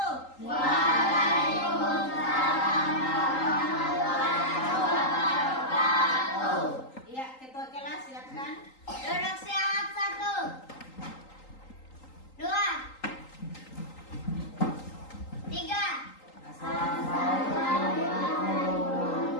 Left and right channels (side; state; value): right; late; 3.8 ms